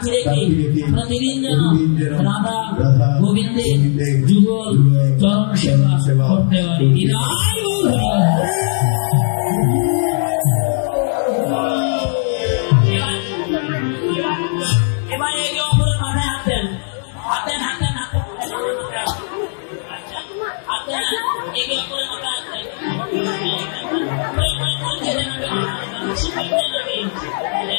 রেখে প্রতিদিন যেন রাধা গোবিন্দের যুগল চরণ সেবা করতে পারি। এবার একে অপরের মাথায় হাত দেন হাত দেন হাত দেন হাত দেন একে অপরের মাথায় হাত দেন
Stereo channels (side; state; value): right; silent; digital silence